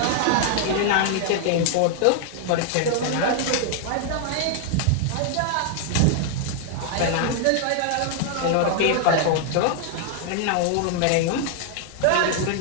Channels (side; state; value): both; different; correlation 0.00